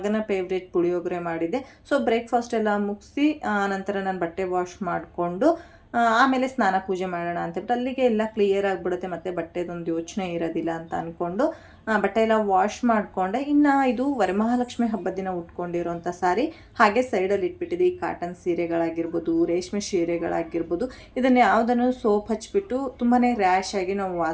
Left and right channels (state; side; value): identical; both; correlation 1.00